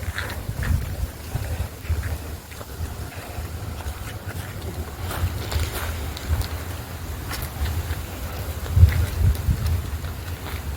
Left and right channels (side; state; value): both; identical; correlation 1.00